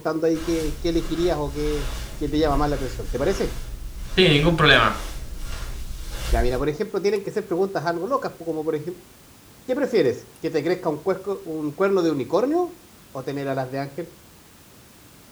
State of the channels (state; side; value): identical; both; correlation 1.00